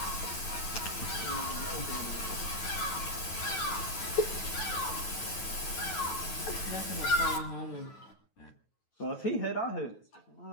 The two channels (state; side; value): late; right; 9.2 ms